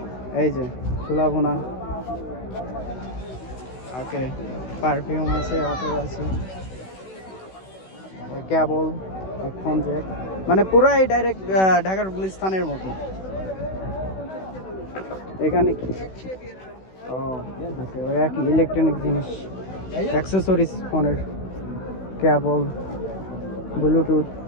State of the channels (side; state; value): right; late; 16 ms